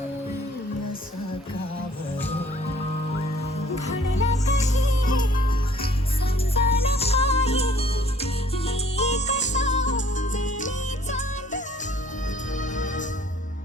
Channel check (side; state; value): both; normal; correlation 0.58